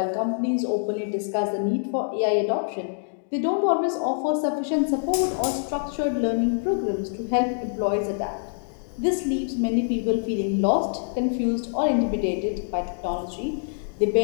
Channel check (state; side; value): silent; right; digital silence